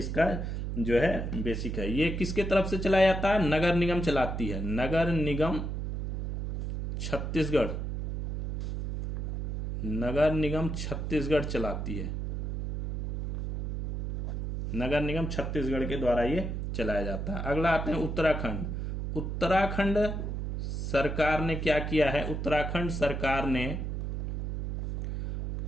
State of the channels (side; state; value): right; noise; hum, 3 dB below the sound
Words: जो है बेसिक है। ये किसके तरफ से चलाया जाता है? नगर निगम चलाती है। नगर निगम छत्तीसगढ़ चलाती है। नगर निगम छत्तीसगढ़ के द्वारा ये चलाया जाता है। अगला आते हैं उत्तराखंड सरकार ने क्या किया है? उत्तराखंड सरकार ने